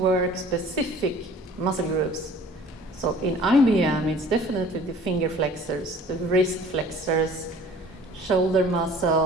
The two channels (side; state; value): both; normal; correlation 0.49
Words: specific muscle groups. So in IBM, it's definitely the finger flexors, the wrist flexors, shoulder